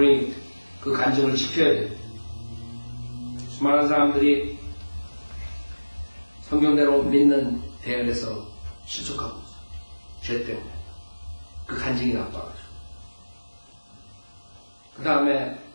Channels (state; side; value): inverted; both; correlation -1.00